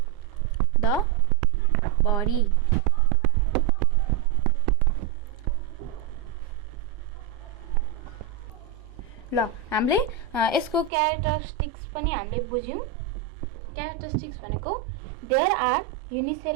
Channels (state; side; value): drops out; left; at 10.9 s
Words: the body. ल हामीले यसको क्यारेक्टरिस्टिक्स पनि हामीले बुझ्यौं. क्यारेक्टरिस्टिक्स भनेको there are